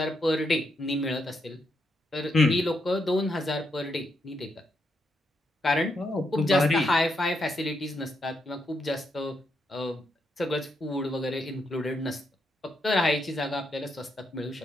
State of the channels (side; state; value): both; normal; correlation 0.80